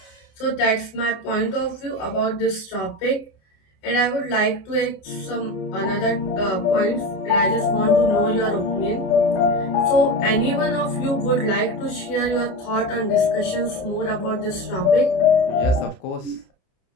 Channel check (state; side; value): late; right; 29 ms